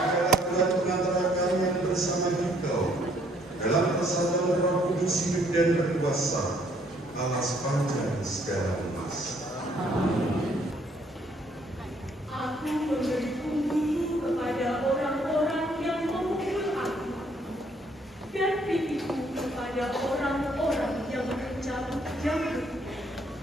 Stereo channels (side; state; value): both; normal; correlation 0.65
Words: Tuhan pengantara kalian bersama Engkau dalam persatuan Roh Kudus hidup dan berkuasa Allah sepanjang segala emas. Aku memberi punggungku kepada orang-orang yang memukul aku, dan pipiku kepada orang-orang yang mencabut jambut.